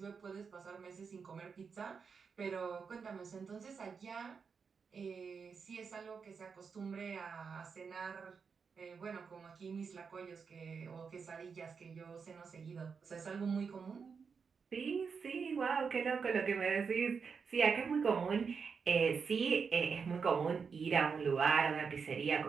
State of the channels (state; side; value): quieter; left; 5.7 dB